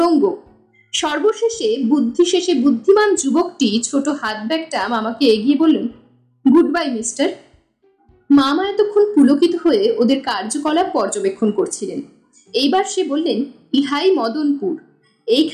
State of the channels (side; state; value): both; identical; correlation 1.00